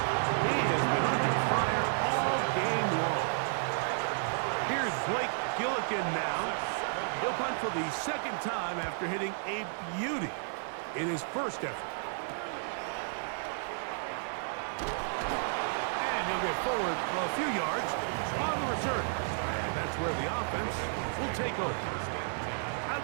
He has been under fire all game long. Here's Blake Gillikin now. He'll punt for the second time after hitting a beauty in his first effort. And he'll get forward a few yards on the return. And that's where the offense will take over. Out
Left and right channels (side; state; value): left; silent; digital silence